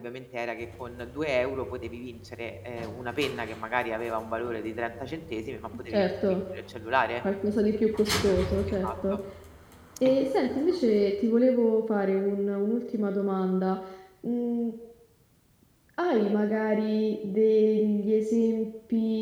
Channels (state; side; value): identical; both; correlation 1.00